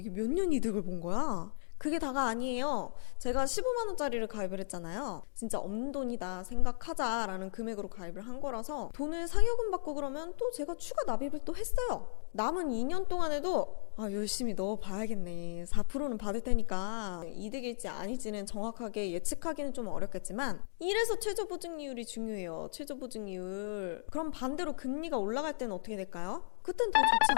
몇 년 이득을 본 거야? 그게 다가 아니에요. 제가 15만 원짜리를 가입을 했잖아요. 진짜 없는 돈이다 생각하자라는 금액으로 가입을 한 거라서 돈을 상여금 받고 그러면 또 제가 추가 납입을 또 했어요. 남은 2년 동안에도 열심히 넣어봐야겠네. 4%는 받을 테니까 이득일지 아닐지는 정확하게 예측하기는 좀 어렵겠지만 이래서 최저보증이율이 중요해요. 최저보증이율. 그럼 반대로 금리가 올라갈 때는 어떻게 될까요? 그땐 더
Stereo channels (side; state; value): right; silent; digital silence